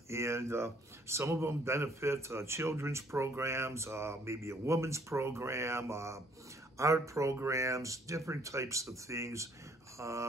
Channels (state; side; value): normal; both; correlation 0.62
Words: And some of them benefit children's programs, maybe a women's program, art programs, different types of things,